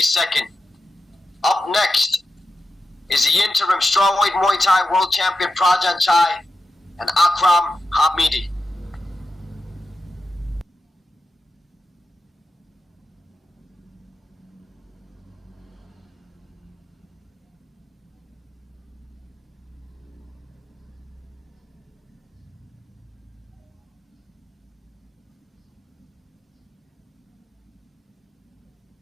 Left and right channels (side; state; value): both; normal; correlation 0.89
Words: Up next is the interim strawweight Muay Thai world champion Prajanchai and Akram Hamidi.